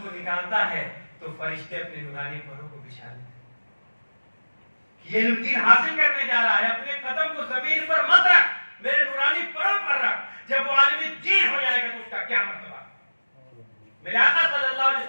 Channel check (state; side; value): inverted; both; correlation -1.00